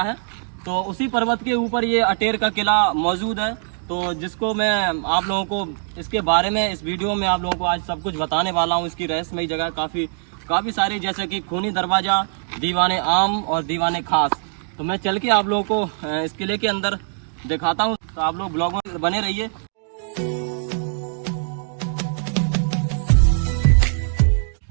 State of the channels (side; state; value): left; silent; digital silence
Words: तो उसी पर्वत के ऊपर ये अटेर का किला मौजूद है। तो जिसको मैं आप लोगों को इसके बारे में इस वीडियो में आप लोगों को आज सब कुछ बताने वाला हूँ। इसकी रहस्यमयी जगह काफ़ी सारी, जैसे कि खूनी दरवाज़ा, दीवाने आम और दीवाने खास। तो मैं चल के आप लोगों को इस किले के अंदर दिखाता हूँ, तो आप लोग ब्लॉग में बने रहिए।